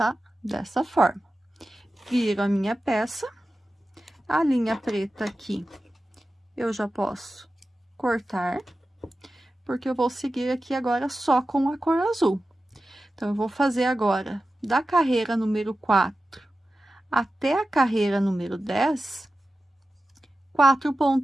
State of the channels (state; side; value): normal; both; correlation 0.94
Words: dessa forma. Viro a minha peça, a linha preta aqui, eu já posso cortar, porque eu vou seguir aqui agora só com a cor azul. Então, eu vou fazer agora, da carreira número 4 até a carreira número 10, 4